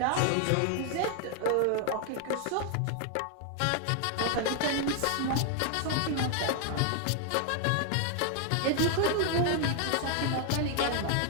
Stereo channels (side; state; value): both; different; correlation 0.00